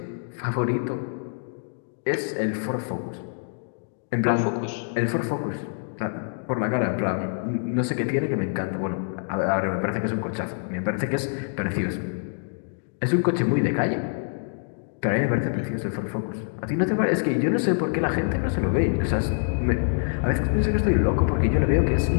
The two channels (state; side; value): silent; right; digital silence